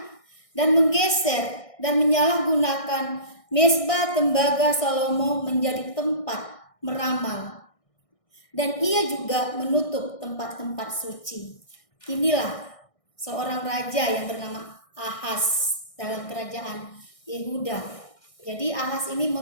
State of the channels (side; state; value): right; late; 1.6 ms